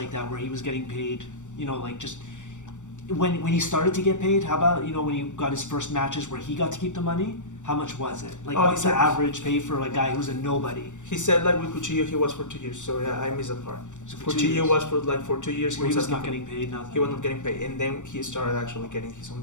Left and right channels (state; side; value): late; right; 0.85 ms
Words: that where he was getting paid, you know, like just when he started to get paid? How about, you know, when he got his first matches where he got to keep the money? How much was it? Like, what's the average pay for a guy who's a nobody? He said like with Cuchillo he was for 2 years, so yeah, I missed that part. So for 2 Cuchillo years. was for 2 years. Where he was not getting paid, nothing. He was not getting paid, and then he started actually getting his own